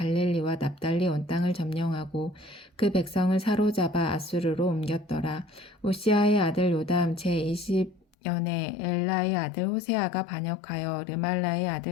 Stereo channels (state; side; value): drops out; right; at 8.1 s